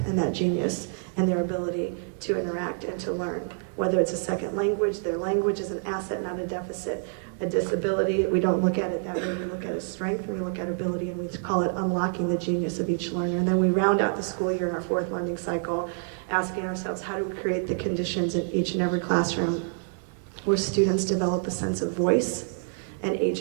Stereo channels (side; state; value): left; silent; 60 dB below the other